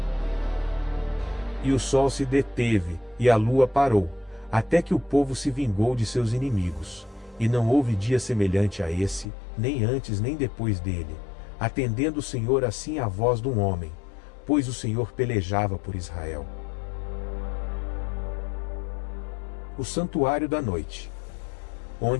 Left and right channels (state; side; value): drops out; right; at 9.2 s